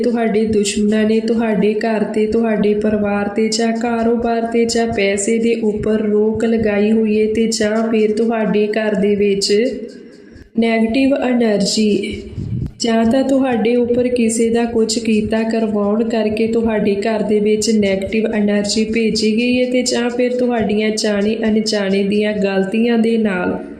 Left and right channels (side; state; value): both; identical; correlation 1.00